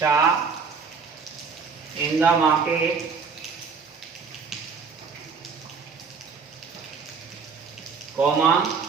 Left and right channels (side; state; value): left; quieter; 5.4 dB